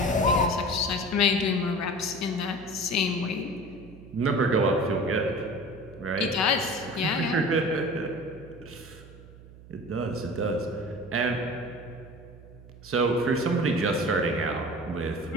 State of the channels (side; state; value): right; noise; hum, 19 dB below the sound